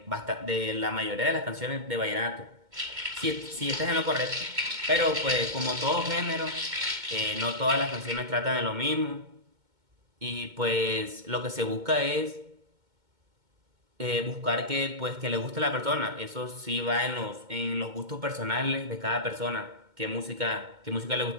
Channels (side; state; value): left; late; 2.2 ms